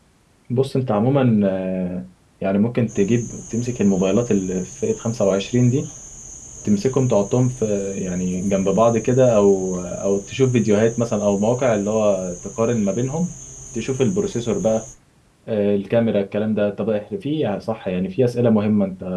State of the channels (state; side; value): identical; both; correlation 1.00